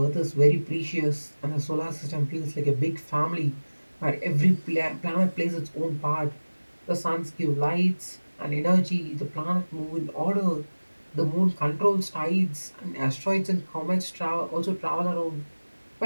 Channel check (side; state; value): both; inverted; correlation -1.00